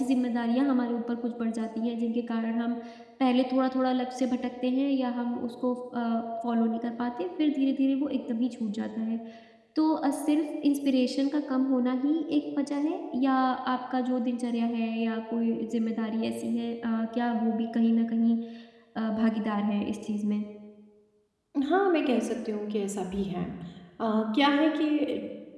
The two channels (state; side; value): identical; both; correlation 1.00